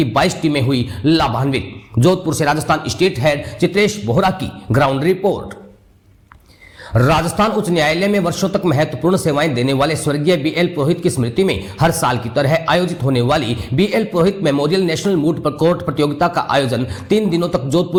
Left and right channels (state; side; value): identical; both; correlation 1.00